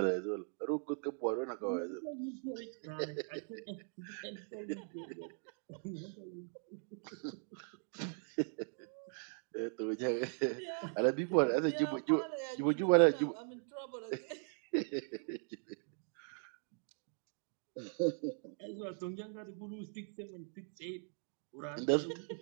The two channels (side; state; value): left; silent; 51 dB below the other